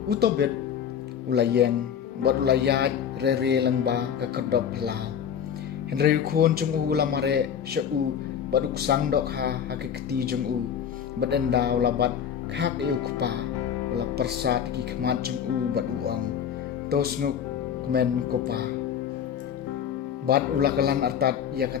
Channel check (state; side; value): quieter; right; 8.4 dB